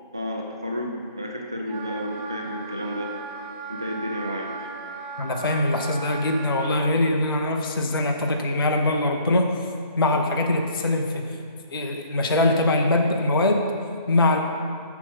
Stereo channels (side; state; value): both; inverted; correlation -0.57